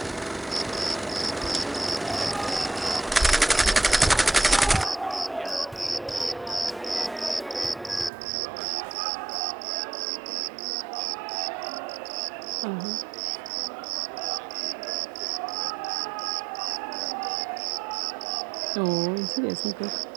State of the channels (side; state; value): left; drops out; at 8.1 s